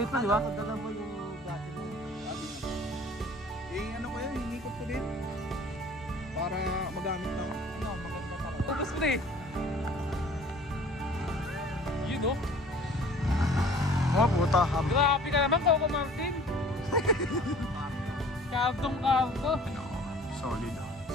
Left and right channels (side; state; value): both; normal; correlation 0.50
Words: na, di ba? Dala mo yung gato mo. Eh, ano ko yan, hinikot ko din. Para magamit na. Ano, maganda talaga. Ubus mo na eh. Yun oh. Oh, puta. Grabe ka naman, Coco Martin. Kabdong-kabdo. Solid.